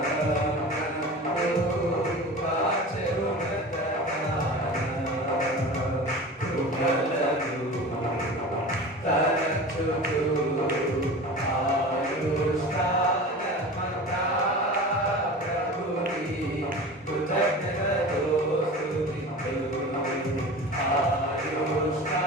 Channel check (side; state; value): both; normal; correlation 0.34